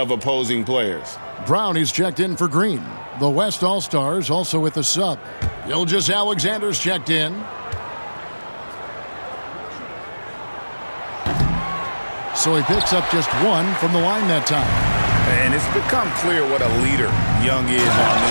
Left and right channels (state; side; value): inverted; both; correlation -1.00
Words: opposing players. Brown is checked in for Green. The West All-Stars also with the sub. Gilgeous-Alexander's checked in. So he picks up just 1 from the line that time. And it's become clear what a leader Young is on